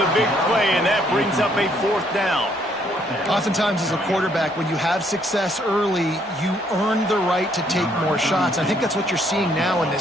big play, and that brings up a 4th down. Oftentimes as a quarterback, when you have success early, you earn the right to take more shots. I think that's what you're seeing now in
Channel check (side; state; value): both; normal; correlation 0.68